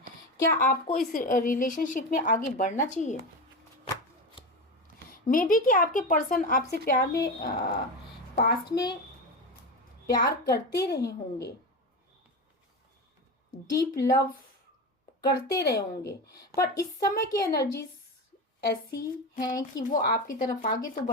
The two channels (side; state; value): both; normal; correlation 0.21